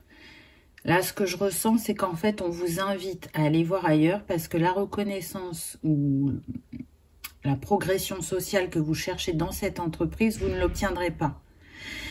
là, ce que je ressens, c'est qu'en fait, on vous invite à aller voir ailleurs parce que la reconnaissance ou la progression sociale que vous cherchez dans cette entreprise, vous ne l'obtiendrez pas.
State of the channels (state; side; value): identical; both; correlation 1.00